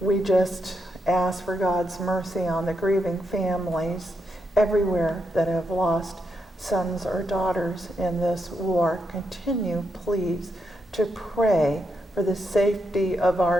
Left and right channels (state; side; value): normal; both; correlation 0.82